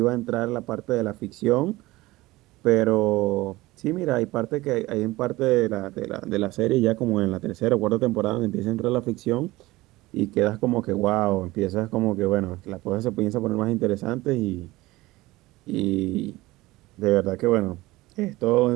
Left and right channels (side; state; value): left; quieter; 19.3 dB